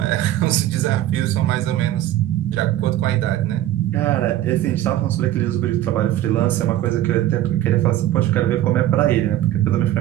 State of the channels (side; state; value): left; quieter; 13.4 dB